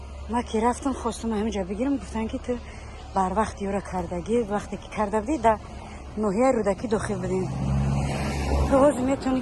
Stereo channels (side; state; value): both; identical; correlation 1.00